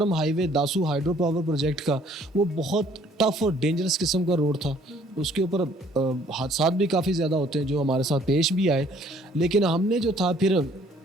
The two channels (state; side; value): normal; both; correlation 0.60